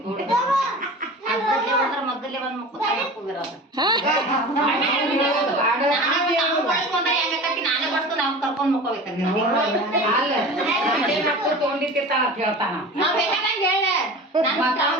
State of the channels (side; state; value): both; normal; correlation 0.35